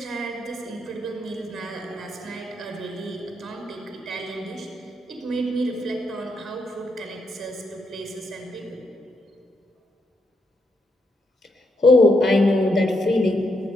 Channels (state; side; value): normal; both; correlation 0.79